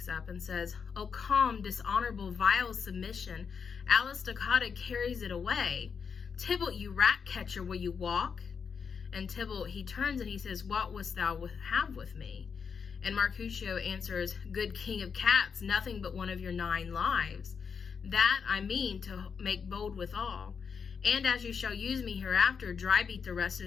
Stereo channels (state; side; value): quieter; right; 6.2 dB